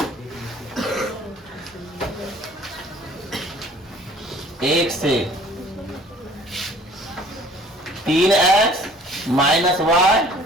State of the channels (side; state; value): both; normal; correlation 0.52